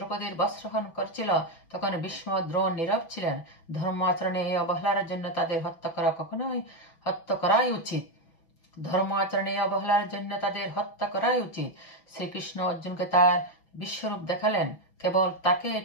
বস্ত্রহরণ করছিল, তখন ভীষ্ম দ্রোণ নীরব ছিলেন। ধর্ম আচরণে এই অবহেলার জন্য তাদের হত্যা করাই উচিত। ধর্ম আচরণে অবহেলার জন্য তাদের হত্যা করাই উচিত। শ্রীকৃষ্ণ অর্জুনকে তার বিশ্বরূপ দেখালেন কেবল তাকে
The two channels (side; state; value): right; late; 6.0 ms